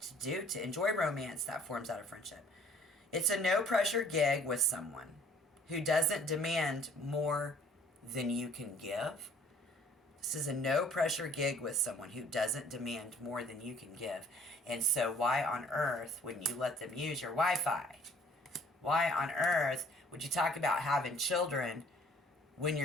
to do to enjoy romance that forms out of friendship. It's a no pressure gig with someone who doesn't demand more than you can give. This is a no pressure gig with someone who doesn't demand more than you can give. And so why on earth wouldn't you let them use your Wi-Fi? Why on earth would you talk about having children when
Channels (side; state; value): both; normal; correlation 0.57